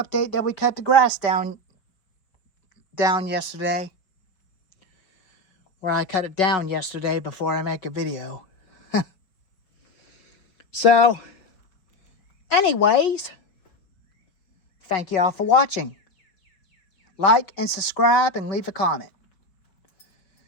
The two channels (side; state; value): right; late; 5.4 ms